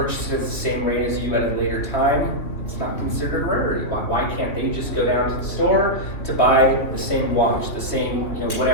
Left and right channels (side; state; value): right; late; 3.0 ms